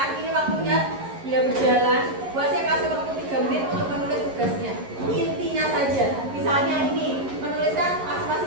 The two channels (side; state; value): left; late; 11 ms